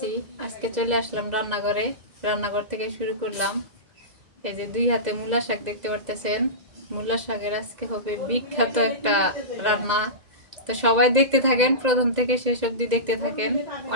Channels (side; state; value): left; late; 2.0 ms